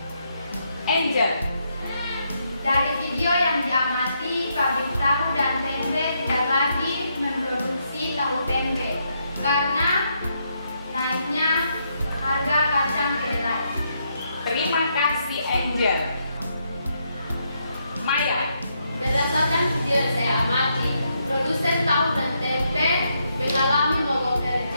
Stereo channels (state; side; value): inverted; both; correlation -0.78